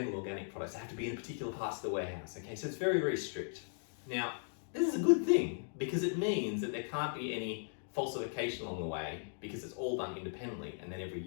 organic products. They have to be in particular parts of the warehouse, okay? So it's very, very strict. Now, this is a good thing because it means that there can't be any falsification along the way because it's all done independently. And then every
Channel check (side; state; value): right; silent; digital silence